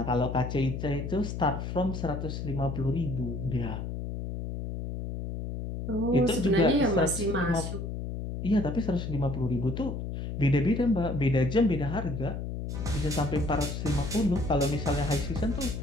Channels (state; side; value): noise; left; hum, 5 dB below the sound